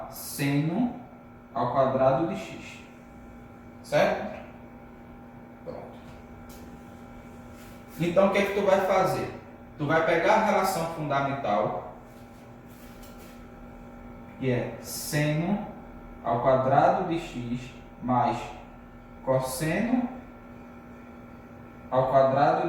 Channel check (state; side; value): identical; both; correlation 1.00